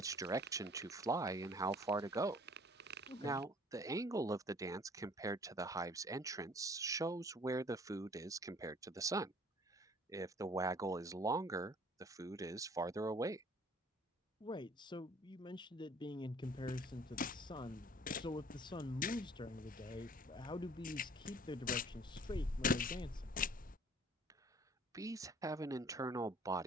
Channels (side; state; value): both; normal; correlation 0.54